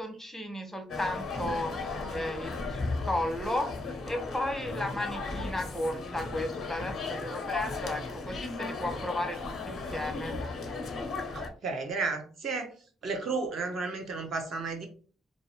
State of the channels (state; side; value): normal; both; correlation 0.72